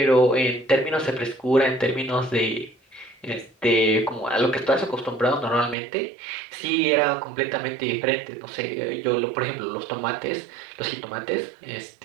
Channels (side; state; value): left; drops out; at 5.8 s